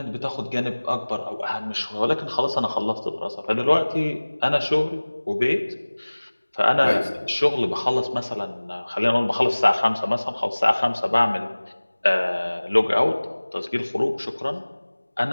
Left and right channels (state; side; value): inverted; both; correlation -1.00